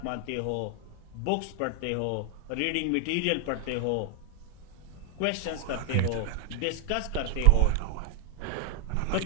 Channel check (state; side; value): different; both; correlation 0.00